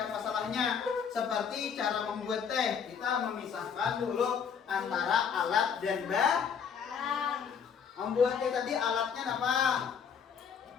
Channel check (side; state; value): right; quieter; 7.0 dB